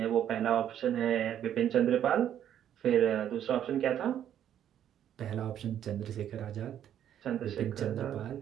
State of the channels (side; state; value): left; quieter; 10.3 dB